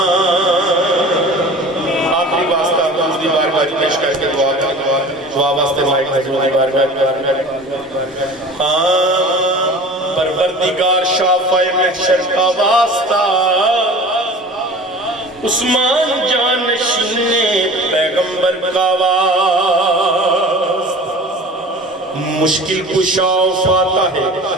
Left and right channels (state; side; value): normal; both; correlation 0.40